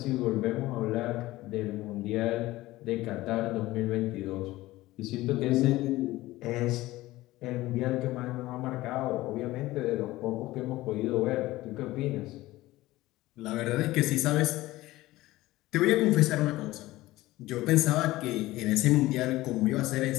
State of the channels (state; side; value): quieter; right; 17.7 dB